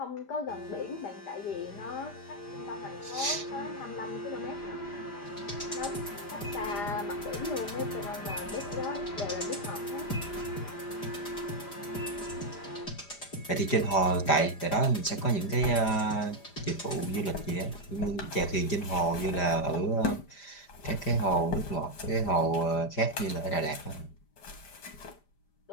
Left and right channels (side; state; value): right; late; 5.0 ms